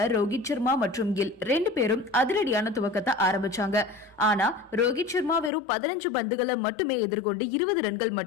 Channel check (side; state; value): right; drops out; at 5.5 s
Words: ரோஹித் சர்மா மற்றும் கில் 2 பேரும் அதிரடியான துவக்கத்தை ஆரம்பிச்சாங்க. ஆனா ரோஹித் சர்மா வெறும் 15 பந்துகளை மட்டுமே எதிர்கொண்டு 20 ரன்கள்